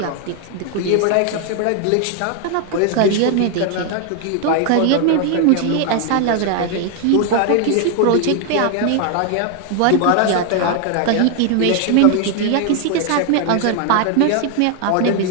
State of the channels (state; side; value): different; both; correlation 0.00